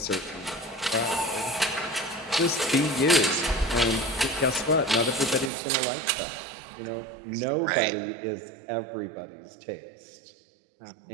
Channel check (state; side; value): drops out; left; at 5.5 s